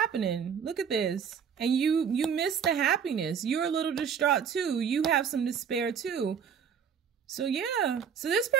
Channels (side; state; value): left; quieter; 7.4 dB